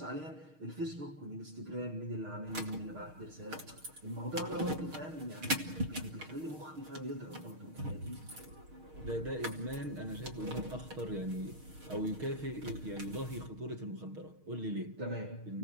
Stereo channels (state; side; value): late; left; 6.5 ms